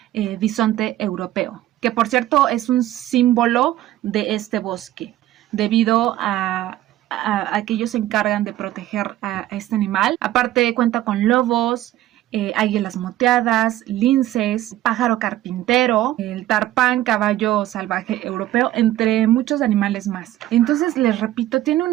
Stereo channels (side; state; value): left; quieter; 14.3 dB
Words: bisonte europeo, que por cierto es un símbolo de este bosque, debido a que ellos se encargan de proteger a este animal. Aparte cuenta con lobos, águilas moteadas, linces, pájaro carpintero, el tarpán, caballo salvaje europeo, entre muchos animales más. Entonces, les repito, tiene